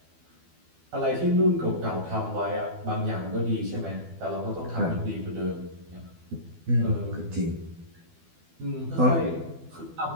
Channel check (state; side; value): late; left; 12 ms